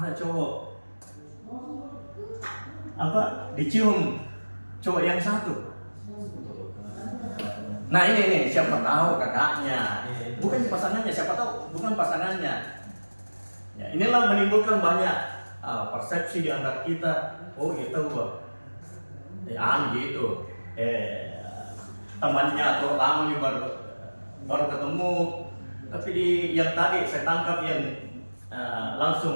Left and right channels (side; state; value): both; inverted; correlation -1.00